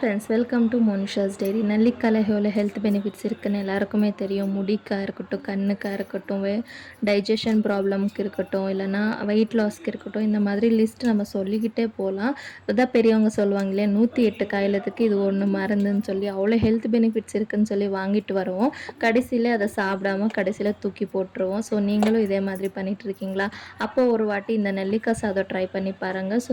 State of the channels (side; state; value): both; identical; correlation 1.00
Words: welcome to Monisha's diary. நெல்லிக்காயில் எவ்வளோ health benefits இருக்குதுன்னு எல்லாருக்குமே தெரியும். முடிக்காக இருக்கட்டும், கண்ணுக்காக இருக்கட்டும், டைஜஷன் ப்ராப்ளம்க்கு இருக்கட்டும், இல்லைனா வெயிட் லாஸ்க்கு இருக்கட்டும், இந்த மாதிரி லிஸ்ட் நம்ம சொல்லிக்கிட்டே போகலாம். அதான் பெரியவங்க சொல்லுவாங்க இல்லையா, 108 காயிலத்துக்கு இது ஒன்று மருந்துன்னு சொல்லி. அவ்வளோ ஹெல்த் பெனிஃபிட்ஸ் இருக்குதுன்னு சொல்லி வாங்கிட்டு வருவோம். கடைசியில் அதை சாப்பிடாமல் கடைசியில் தூக்கி போட்டுருவோம். ஸோ நீங்களும் இதே மாதிரி பண்ணிகிட்டு இருக்கீங்களா? அப்போது ஒரு வாட்டி இந்த நெல்லிக்காய் சாதம் ட்ரை பண்ணி பாருங்கள்.